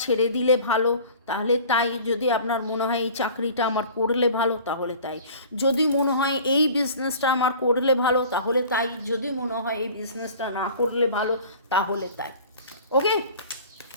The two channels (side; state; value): both; inverted; correlation -0.44